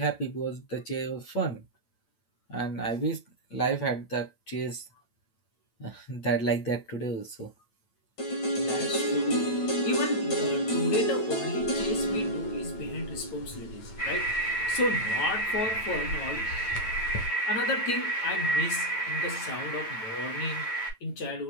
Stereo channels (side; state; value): right; late; 9.0 ms